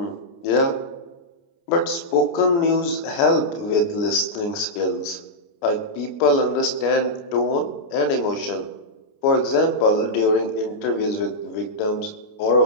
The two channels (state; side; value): late; right; 29 ms